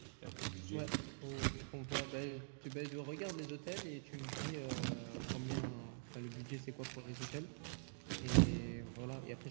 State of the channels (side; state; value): left; silent; digital silence